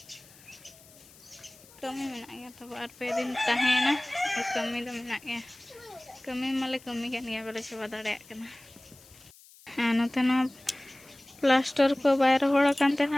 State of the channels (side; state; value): left; noise; hiss, 24 dB below the sound